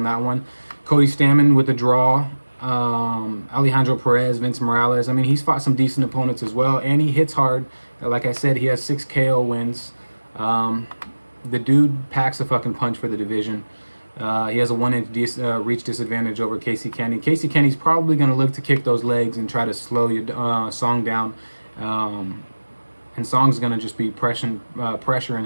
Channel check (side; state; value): both; inverted; correlation -1.00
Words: that one. Cody Stamann with the draw. Alejandro Perez, Vince Morales. I mean, he's fought some decent opponents as well, and he hits hard. Like I said, he has 6 KO wins. The dude packs a fucking punch for the division. He has a 1-inch reach disadvantage over Casey Kenny. Casey Kenny's probably going to look to kick those legs and try to slow Song down. And Song's going to just be pressuring